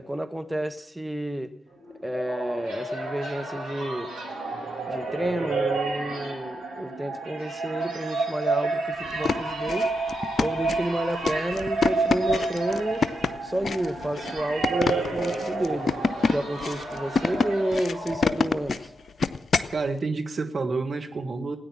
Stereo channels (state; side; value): normal; both; correlation 0.85